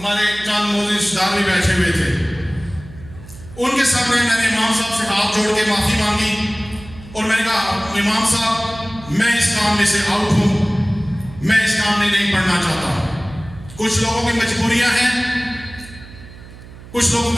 چاند موزی رشتےدار بھی بیٹھے ہوئے تھے. ان کے سامنے میں نے امام صاحب سے ہاتھ جوڑ کے معافی مانگی اور میں نے کہا امام صاحب میں اس کام میں سے آؤٹ ہوں میں اس کام میں نہیں پڑھنا چاہتا. کچھ لوگوں کی مجبوریاں ہیں کچھ لوگوں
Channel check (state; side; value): noise; right; hum, 18 dB below the sound